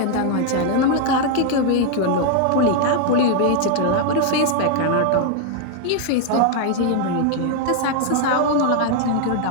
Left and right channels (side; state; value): both; different; correlation 0.00